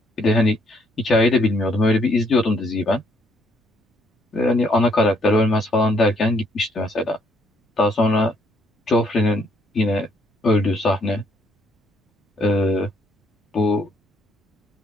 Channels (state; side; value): normal; both; correlation 0.68